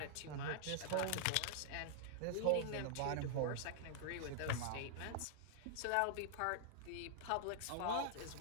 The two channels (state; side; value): different; both; correlation -0.01